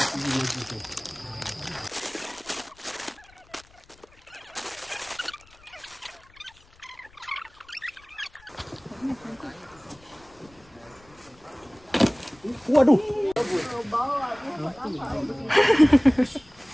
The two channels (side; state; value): left; noise; rumble, 28 dB below the sound